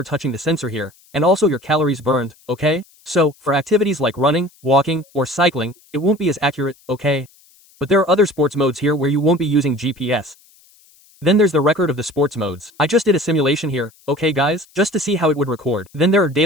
touching the sensor here, and also your calories burned, okay? So, for activities like running, walking, or cycling, it won't be as accurate, okay? But there are other sports modes here where you won't be using GPS. Then there's the record of the sports modes. I just did a simulation here, okay guys? Just to see how it would record. Then there are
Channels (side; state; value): left; noise; hiss, 30 dB below the sound